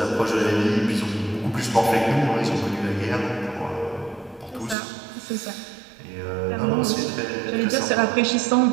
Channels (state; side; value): drops out; left; at 4.8 s